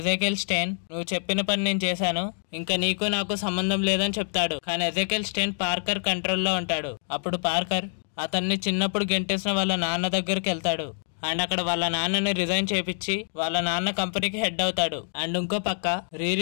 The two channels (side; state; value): right; silent; digital silence